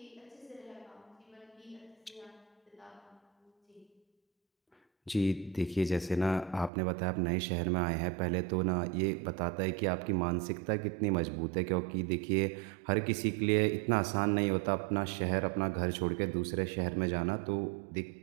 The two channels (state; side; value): drops out; left; at 6.7 s